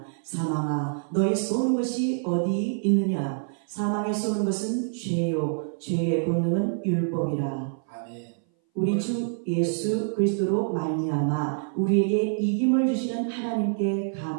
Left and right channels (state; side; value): silent; left; 59 dB below the other